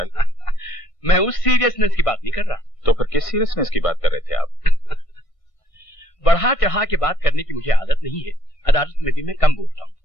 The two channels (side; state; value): right; late; 1.5 ms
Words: मैं उस सीरियसनेस की बात नहीं कर रहा। तो फिर किस सीरियसनेस की बात कर रहे थे आप? बढ़ा चढ़ा के बात करने की मुझे आदत नहीं है। अदालत में भी मैं कम बोलता हूँ,